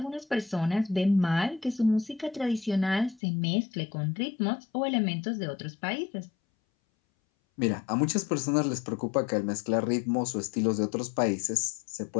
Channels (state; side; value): drops out; right; at 3.2 s